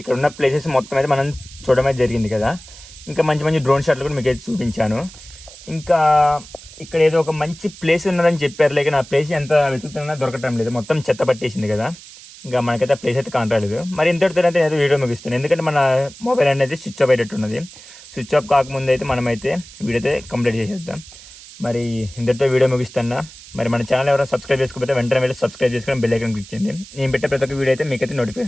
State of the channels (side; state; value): right; noise; hiss, 18 dB below the sound